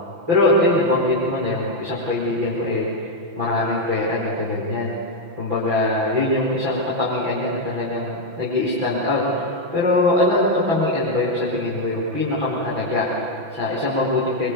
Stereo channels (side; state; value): left; late; 5.9 ms